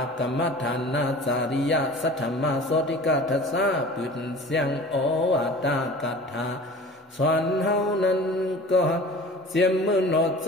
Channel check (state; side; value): normal; both; correlation 0.41